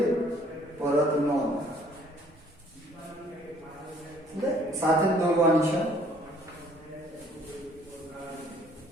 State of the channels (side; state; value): both; normal; correlation 0.58